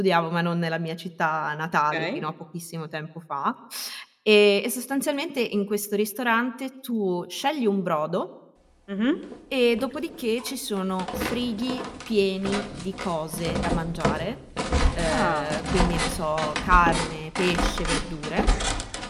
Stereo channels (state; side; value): identical; both; correlation 1.00